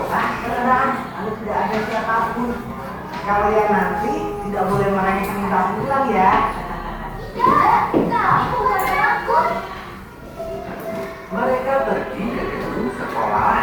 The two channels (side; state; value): both; identical; correlation 1.00